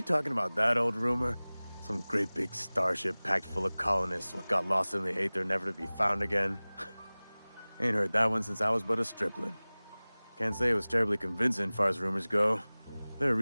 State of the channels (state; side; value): inverted; both; correlation -0.99